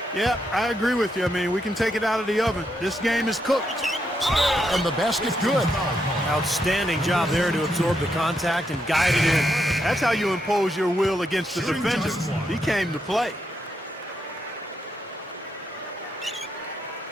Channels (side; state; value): both; normal; correlation 0.80